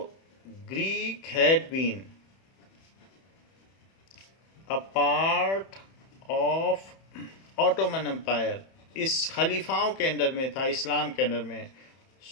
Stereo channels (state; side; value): late; right; 31 ms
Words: Greek had been a part of Ottoman Empire. इस खलीफाओं के अंडर में था, इस्लाम के अंडर में.